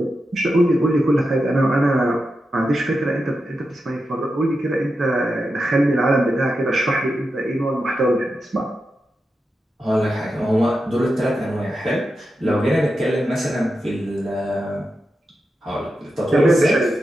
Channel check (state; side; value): normal; both; correlation 0.89